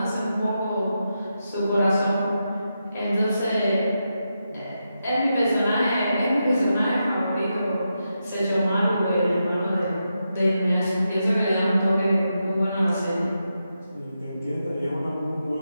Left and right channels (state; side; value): inverted; both; correlation -0.86